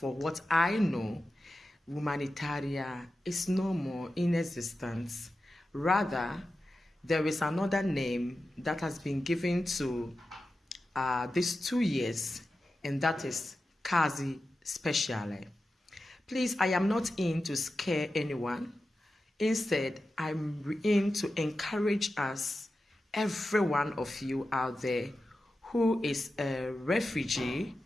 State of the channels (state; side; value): normal; both; correlation 0.92